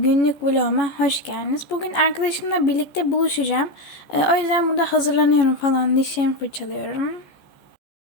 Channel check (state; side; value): late; right; 14 ms